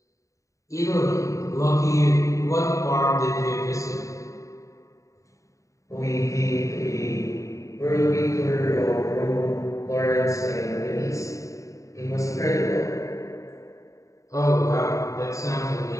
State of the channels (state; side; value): late; right; 0.16 ms